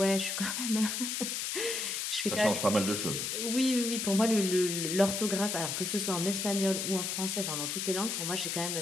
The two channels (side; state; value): left; noise; hiss, 2 dB below the sound